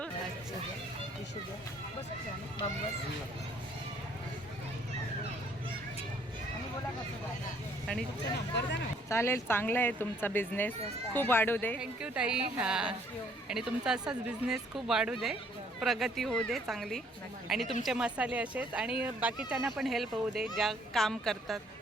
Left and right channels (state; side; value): normal; both; correlation 0.63